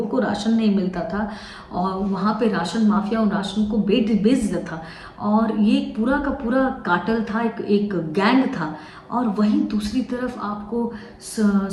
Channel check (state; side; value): identical; both; correlation 1.00